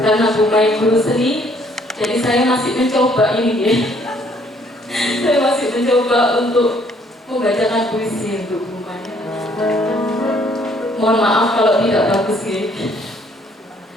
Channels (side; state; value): both; normal; correlation 0.64